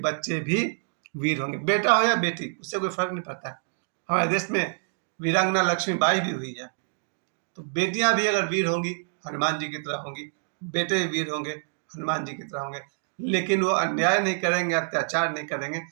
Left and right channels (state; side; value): silent; left; digital silence